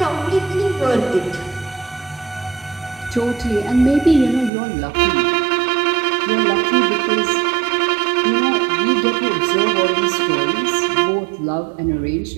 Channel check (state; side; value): drops out; left; at 4.5 s